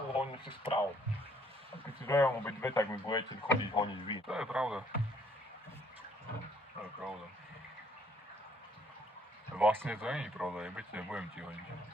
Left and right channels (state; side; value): normal; both; correlation 0.63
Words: honím si spravo. A keď si dojevem obe dve, tak mi budete chodiť honiť vy. To je pravda. To je pravda. Vlastne to nie je pravda, nebudem ti honiť.